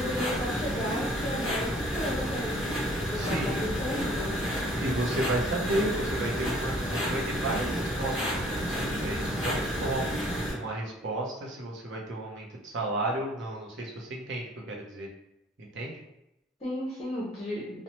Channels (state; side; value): normal; both; correlation 0.56